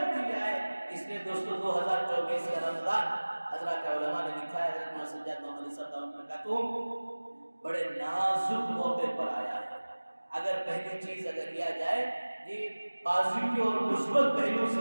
آئے. اس لیے دوستو 2024 کا رمضان حضرات علماء نے لکھا ہے, حضرت محمد سجاد محمد علی صاحب دعوت میں کہتا بڑے نازک موقع پر آیا ہے. اگر پہلی چیز اگر لیا جائے جی پازیٹیو اور مثبت پہلو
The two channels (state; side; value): inverted; both; correlation -1.00